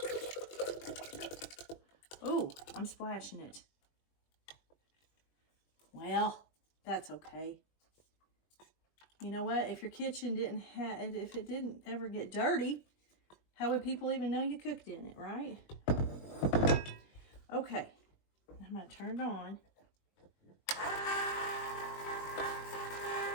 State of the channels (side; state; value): right; late; 21 ms